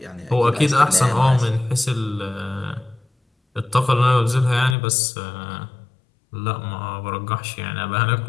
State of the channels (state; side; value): drops out; right; at 4.8 s